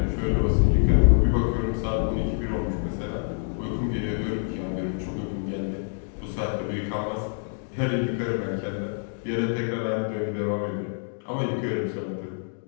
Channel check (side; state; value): right; silent; digital silence